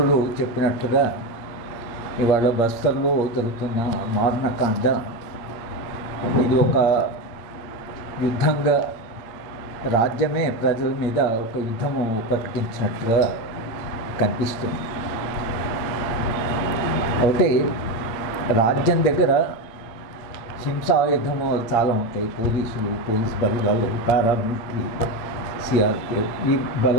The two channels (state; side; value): late; right; 8.7 ms